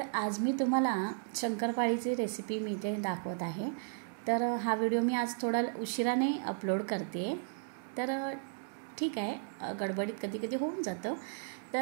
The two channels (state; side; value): silent; left; digital silence